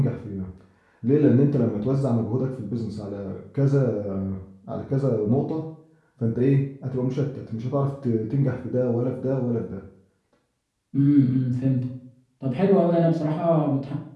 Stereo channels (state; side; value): identical; both; correlation 1.00